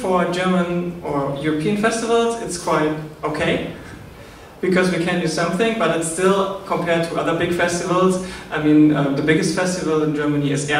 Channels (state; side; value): identical; both; correlation 1.00